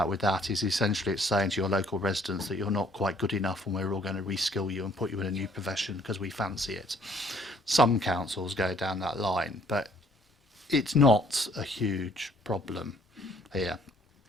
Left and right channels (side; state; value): both; normal; correlation 0.61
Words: with that is essentially it's saying to your local residents that you're not quite good enough and we're all going to reskill you and put you in a new profession because we fancy it. Some councils go down that line, but it's not a huge problem here.